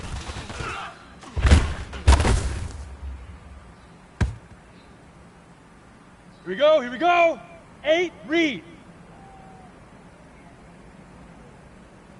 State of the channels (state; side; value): identical; both; correlation 1.00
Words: Here we go, 8, read.